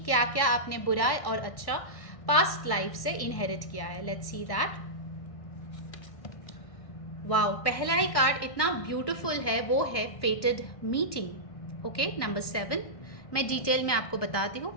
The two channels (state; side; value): late; right; 1.6 ms